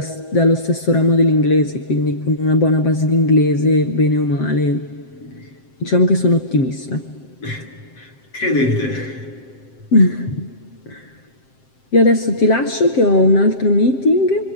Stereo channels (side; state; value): right; late; 7.6 ms